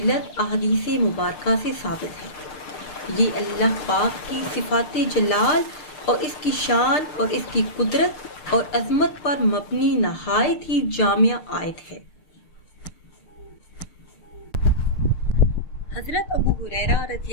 अहदीस मुबारका से साबित है। ये अल्लाह पाक की सिफ़ात जलाल और इसकी शान और इसकी कुदरत और अज़मत पर मबनी नहायत ही जामिया आयत है। हज़रत अबू हुरैरा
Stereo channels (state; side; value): late; right; 6.6 ms